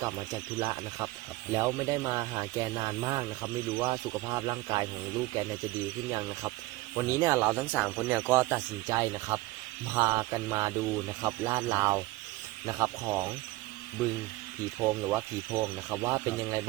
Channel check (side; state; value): left; quieter; 19.6 dB